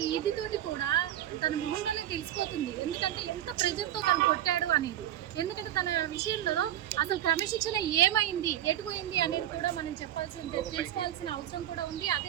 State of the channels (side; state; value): left; quieter; 12.2 dB